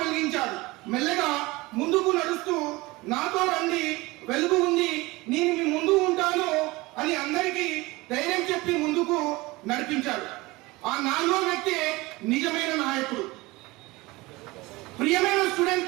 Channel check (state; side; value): quieter; left; 21.8 dB